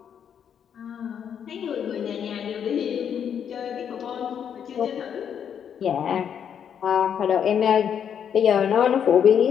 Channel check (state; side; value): quieter; right; 8.3 dB